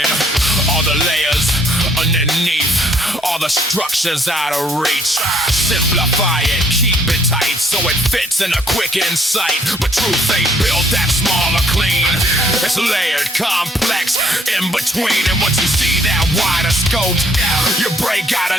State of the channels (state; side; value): normal; both; correlation 0.65